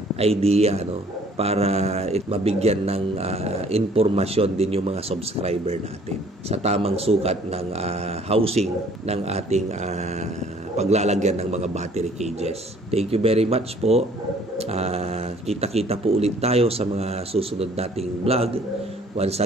idea, para mabigyan ng informasyon din yung mga subscriber natin sa tamang sukat ng housing ng ating paglalagyan ng mga battery cages. Thank you very much po. Kita-kita po ulit tayo sa mga susunod nating vlog. Once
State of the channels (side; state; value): both; normal; correlation 0.57